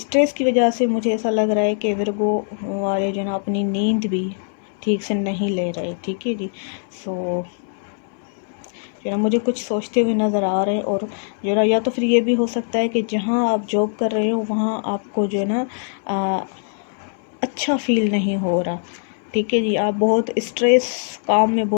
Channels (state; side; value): silent; right; digital silence